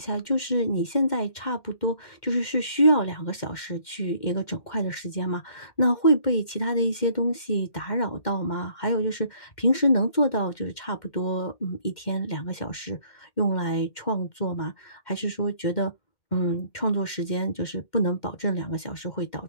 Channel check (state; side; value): late; right; 2.1 ms